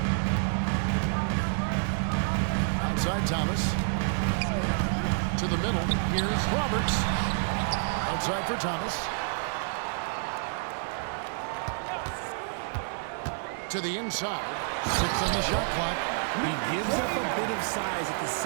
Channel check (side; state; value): left; silent; digital silence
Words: Outside Thomas. To the middle. Here's Roberts. Outside for Thomas. To the inside. 6 on the shot clock. He gives up a bit of size at the